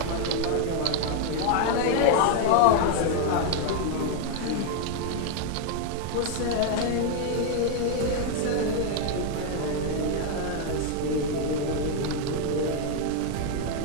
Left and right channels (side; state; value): both; different; correlation 0.00